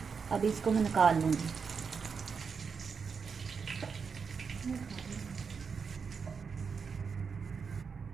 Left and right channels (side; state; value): left; quieter; 5.8 dB